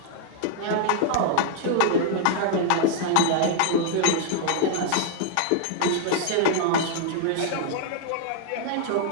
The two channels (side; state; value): both; different; correlation -0.01